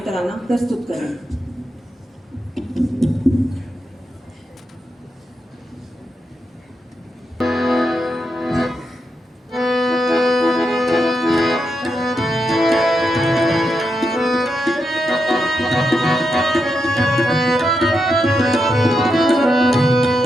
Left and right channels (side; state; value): both; normal; correlation 0.85